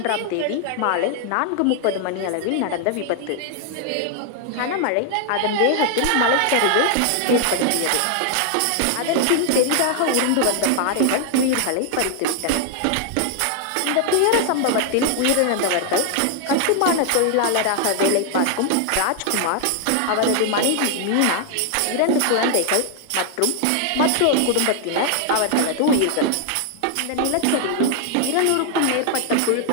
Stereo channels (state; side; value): different; both; correlation 0.00